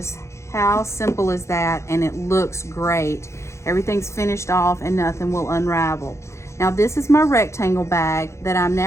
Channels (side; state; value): right; late; 0.14 ms